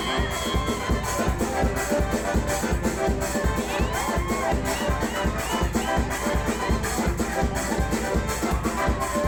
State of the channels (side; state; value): both; identical; correlation 1.00